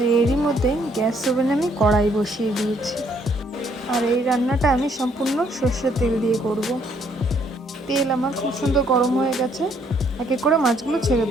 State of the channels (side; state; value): both; normal; correlation 0.67